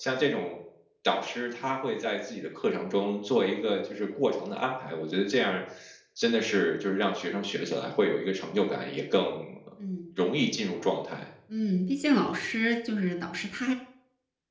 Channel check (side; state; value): both; identical; correlation 1.00